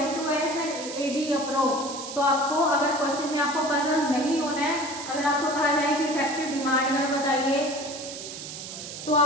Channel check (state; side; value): noise; right; hiss, 10 dB below the sound